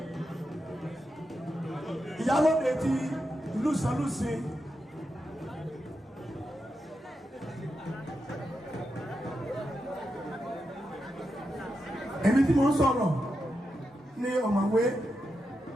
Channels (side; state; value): both; normal; correlation 0.87